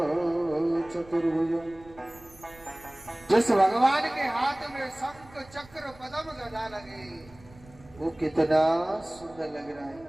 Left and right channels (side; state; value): right; noise; rumble, 23 dB below the sound